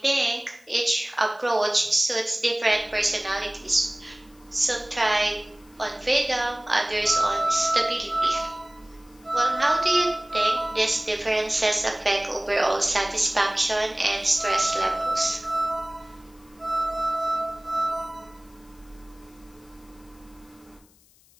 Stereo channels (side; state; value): left; noise; hiss, 30 dB below the sound